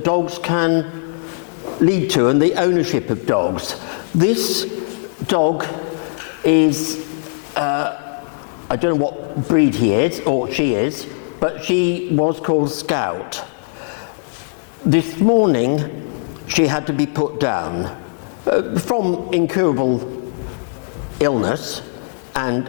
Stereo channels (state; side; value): silent; right; 66 dB below the other